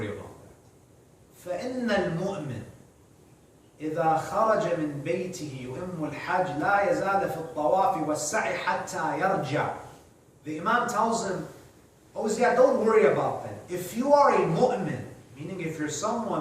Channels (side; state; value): both; identical; correlation 1.00